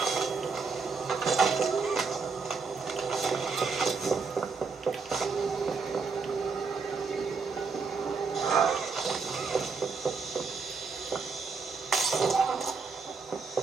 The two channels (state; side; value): quieter; left; 4.9 dB